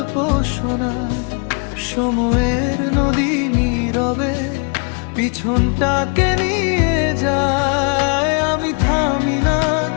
শোনায়। সময়ের নদী নীরবে পিছনটাকে নিয়ে যায়। আমি থামি না,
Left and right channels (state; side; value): quieter; right; 37.8 dB